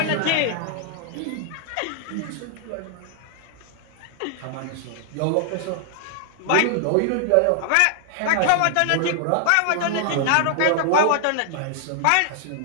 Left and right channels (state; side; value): different; both; correlation 0.00